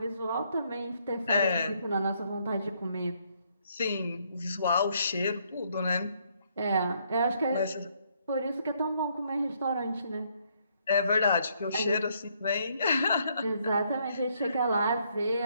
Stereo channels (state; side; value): inverted; both; correlation -0.71